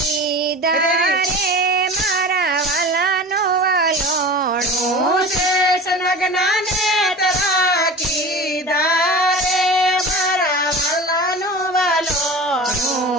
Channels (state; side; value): normal; both; correlation 0.35